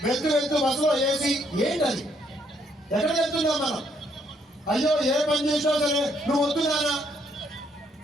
వెళ్తూ బస్సులో ఏసీ. ఏంటది? ఎక్కడికి వెళ్తున్నాం మనం? అయ్యో ఏ పని చేసినా సరే నువ్వు వద్దున్నానా?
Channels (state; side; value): normal; both; correlation 0.71